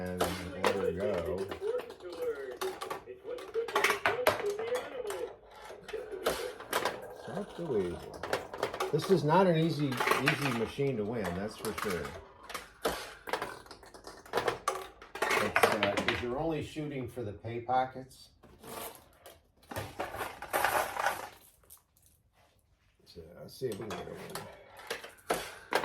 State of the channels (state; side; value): identical; both; correlation 1.00